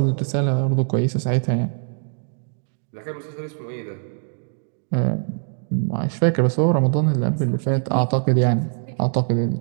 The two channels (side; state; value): left; silent; 64 dB below the other